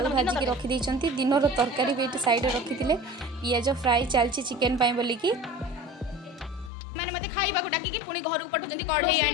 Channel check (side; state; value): right; drops out; at 6.7 s